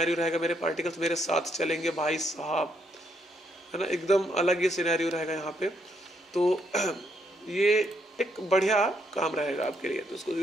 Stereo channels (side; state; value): both; normal; correlation 0.74